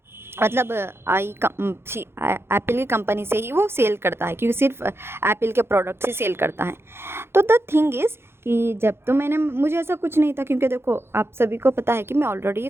मतलब एप्पल की कंपनी से ही वो सेल करता है, क्योंकि सिर्फ एप्पल के प्रोडक्ट से सेल करता है। तो द थिंग इज़ कि जब तो मुझे ऐसा कुछ नहीं था, क्योंकि देखो आप सभी को पता है कि मैं ऑलरेडी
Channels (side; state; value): left; late; 0.12 ms